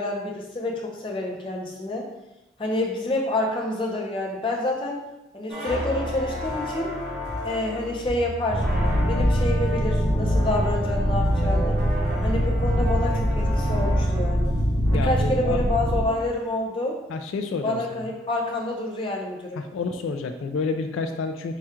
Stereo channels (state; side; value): normal; both; correlation 0.68